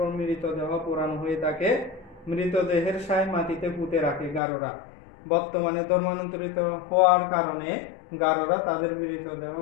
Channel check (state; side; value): drops out; right; at 4.4 s